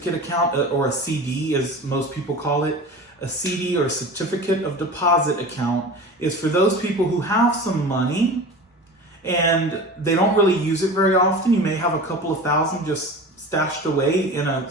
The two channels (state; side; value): normal; both; correlation 0.34